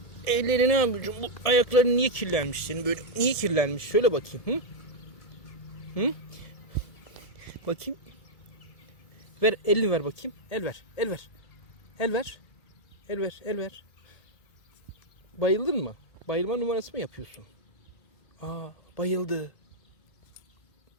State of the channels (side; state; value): right; late; 1.7 ms